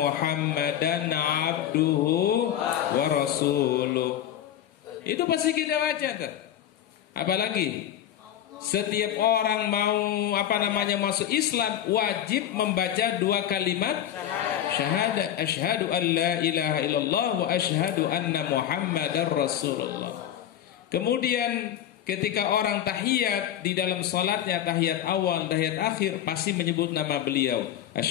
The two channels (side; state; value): right; quieter; 10.9 dB